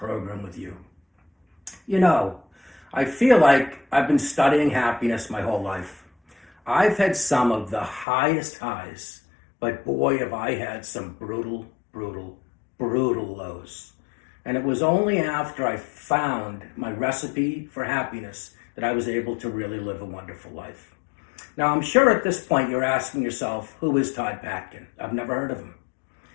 with you. You know, I feel like I've been studying happiness my whole life. I've had some of the highest highs, but boy, have I had some brutal, brutal lows. And it was only after I found my recipe for happiness that I was able to really live a wonderful life. Now, I'm sure at this point you're asking yourself, who is Todd Patkin? I've never heard of him.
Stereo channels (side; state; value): right; drops out; at 8.1 s